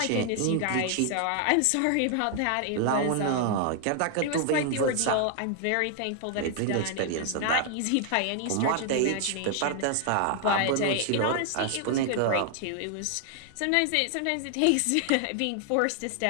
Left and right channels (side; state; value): both; different; correlation 0.00